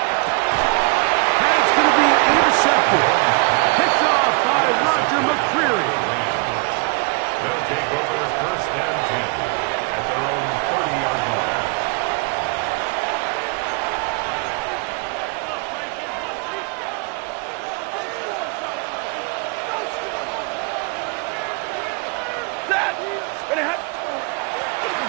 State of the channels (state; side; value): quieter; left; 30.8 dB